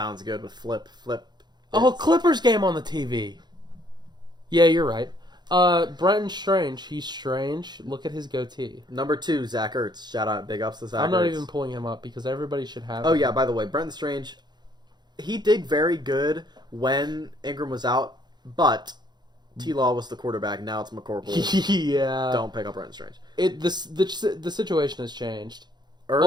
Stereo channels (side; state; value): left; late; 0.21 ms